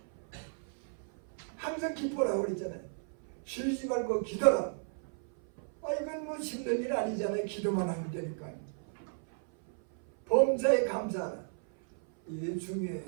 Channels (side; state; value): left; silent; 55 dB below the other